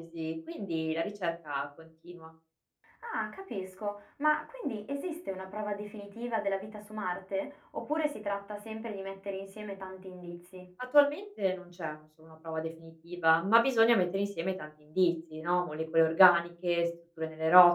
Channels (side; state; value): both; identical; correlation 1.00